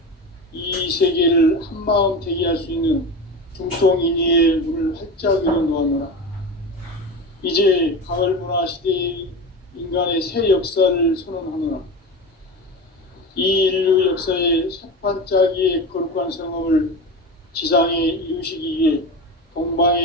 이 세계를 한마음 대기할 수 있는 중통인의의 문을 활짝 열어놓았노라. 이제 가을 문화 시대의 인간의 새 역사를 선언하노라. 이 인류 역사의 새판짜기의 거룩한 성업을 지상에 이루시기 위해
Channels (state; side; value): normal; both; correlation 0.26